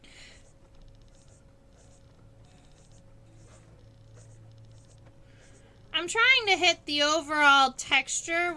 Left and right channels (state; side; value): identical; both; correlation 1.00